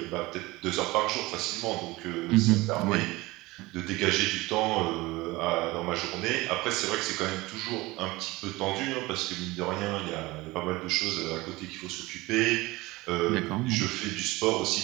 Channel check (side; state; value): left; quieter; 20.9 dB